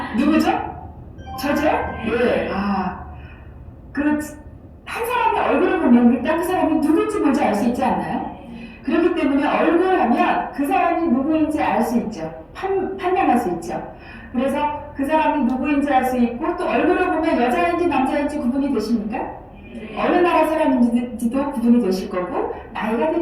누구죠? 저죠? 네. 한 사람의 얼굴을 보면 일단 그 사람이 누구인지 먼저 알 수 있지 않나요? 그렇기 때문에 얼굴을 하면 그 사람이 누구인지 알 수 있죠. 판명할 수 있죠. 그래서 그 사람이 누구인지 알 수 있고 또 얼굴을 보면 여자인지 남자인지 구분이 되십니까? 어느 나라 사람인지도 구분이 되실 거고 나이가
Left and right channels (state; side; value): identical; both; correlation 1.00